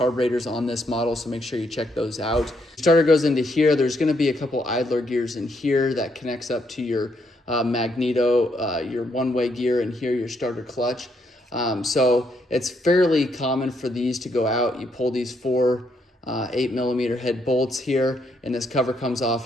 on this model, so make sure you check those out. Starter goes into here. There's going to be a couple idler gears in here that connects up to your magneto, your one-way gear, and here your starter clutch. So it's fairly common for these to go out. You pull these four 8mm head bolts here, and this cover comes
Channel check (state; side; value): normal; both; correlation 0.75